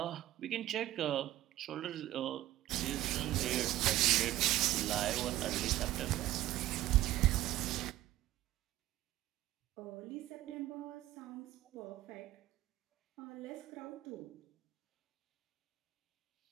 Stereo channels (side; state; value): left; quieter; 14.9 dB